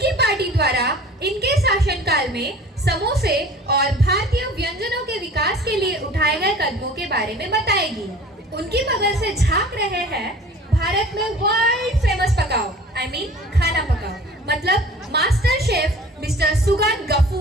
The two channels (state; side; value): normal; both; correlation 0.45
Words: पार्टी द्वारा इनके शासनकाल में समोसे और भारतीय व्यंजनों के विकास के लिए उठाए गए कदमों के बारे में बताएगी। उनकी बगल से झांक रहे हैं भारत में वर्ल्ड फेमस पकाओ, खाना पकाओ, मतलब master chef mister Sugan